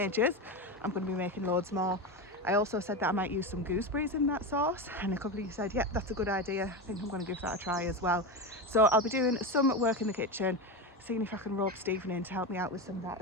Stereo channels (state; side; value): normal; both; correlation 0.18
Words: I'm going to be making loads more. I also said that I might use some gooseberries in that sauce, and a couple of you said, yeah, that's a good idea. I think I'm going to give that a try as well. So I'll be doing some work in the kitchen, seeing if I can rope Stephen in to help me out with some of that